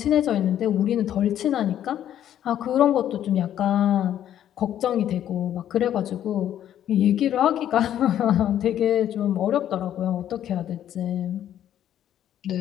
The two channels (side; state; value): right; quieter; 10.9 dB